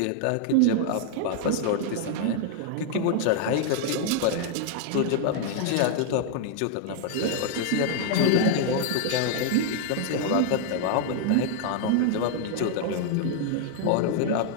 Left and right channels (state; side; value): different; both; correlation 0.00